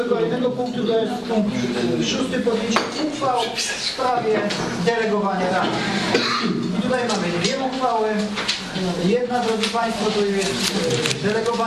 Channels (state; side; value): identical; both; correlation 1.00